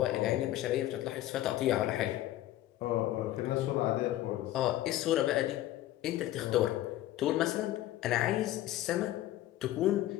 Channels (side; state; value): right; quieter; 14.4 dB